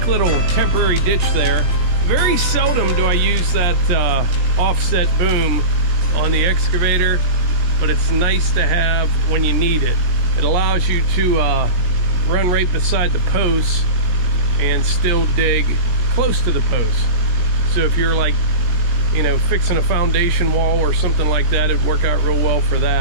little temporary ditch there. Very seldom do I use that offset boom on the excavator, but it's nice to have when you need it. It allows you to run right beside the post and still dig close to the post. So if you're like, you know, fixing a foundation wall or something like that, it'd work out real well for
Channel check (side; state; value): left; late; 17 ms